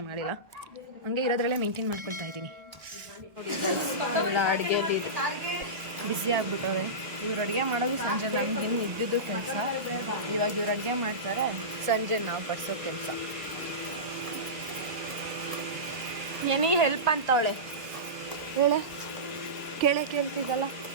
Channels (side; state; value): left; late; 1.5 ms